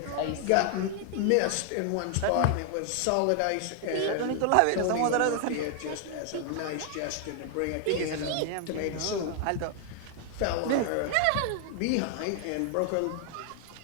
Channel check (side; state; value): both; different; correlation 0.00